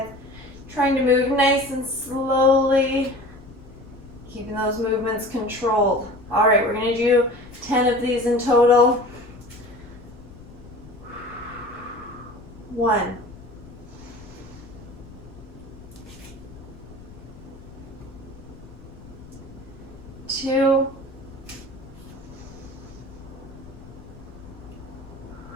Trying to move nice and slowly. Keeping those movements controlled. All right, we're going to do 10 of these in total. 1. 2.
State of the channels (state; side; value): noise; left; rumble, 18 dB below the sound